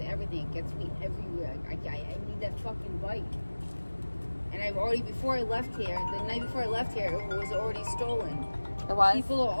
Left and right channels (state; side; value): inverted; both; correlation -1.00